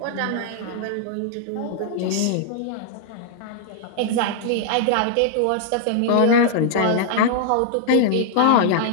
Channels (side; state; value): both; different; correlation -0.01